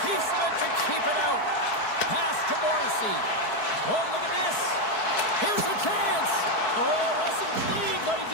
piece of it to keep it out. Pass to Morrissey. Oh, look at this. Here's a chance. Oh, wasn't clean, but he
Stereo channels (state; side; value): late; right; 4.6 ms